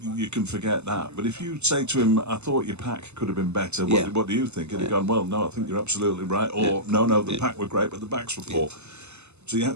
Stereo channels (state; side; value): late; left; 0.82 ms